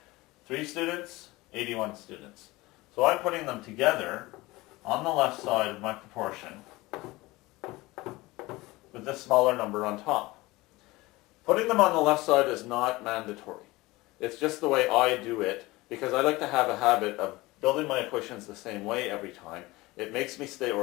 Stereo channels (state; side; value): quieter; right; 20.7 dB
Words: 3 students, 81 students. So I'm putting them together on the left side of my proportion with the smaller number on top. Putting them on the left side is not mandatory. It's just the way I do it because I like to have a habit of building my equations the same way every time. It makes me stay